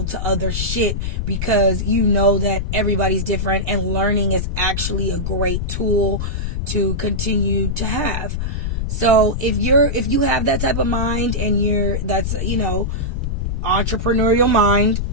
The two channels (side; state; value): left; noise; rumble, 1 dB below the sound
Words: to other shit, because you know that everybody's different, and learning is actually a great tool to continue to have. So if you have that type of mind, and that's entrepreneurial mind,